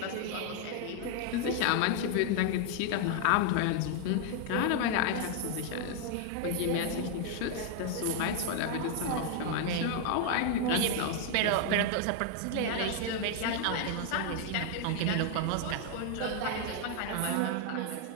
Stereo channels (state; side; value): different; both; correlation 0.00